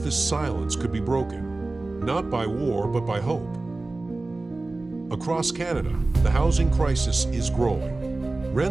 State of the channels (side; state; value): left; quieter; 3.2 dB